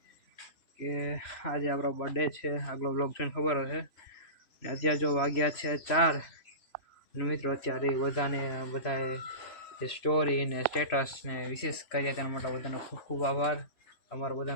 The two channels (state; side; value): late; right; 3.1 ms